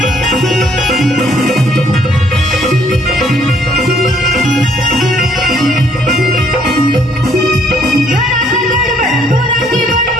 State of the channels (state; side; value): normal; both; correlation 0.65